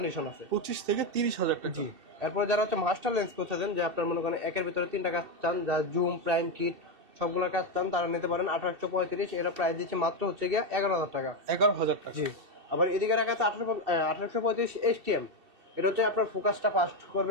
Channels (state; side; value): late; left; 2.7 ms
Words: আছে। 25 থেকে 30,000 টাকা। জি। এরপর যারা হচ্ছে মাস্টার লেন্স করতেছেন, যে আপনার মনে করেন একের ভিতরে 3টা কাজ চান, যা জুম, প্রাইম, কিট সবগুলোর কাজ চান, তারা নিতে পারেন 1835। এটা প্রাইস দিচ্ছে মাত্র হচ্ছে গিয়ে 11,000 টাকা। 11,000 টাকা। জি। আবার এদিকে রাখা আছে 1835 STM, এটা হচ্ছে আপনার ফোকাসটা ফাস্ট